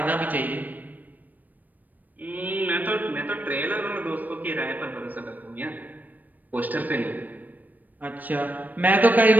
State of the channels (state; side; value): late; left; 0.085 ms